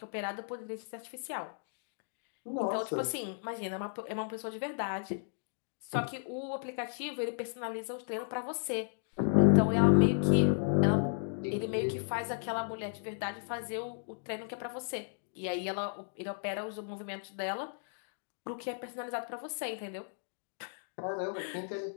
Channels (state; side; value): silent; right; digital silence